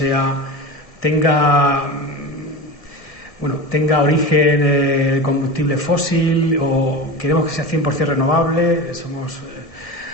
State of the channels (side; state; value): right; late; 1.7 ms